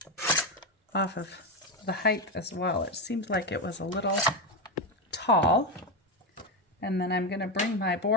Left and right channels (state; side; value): normal; both; correlation 0.11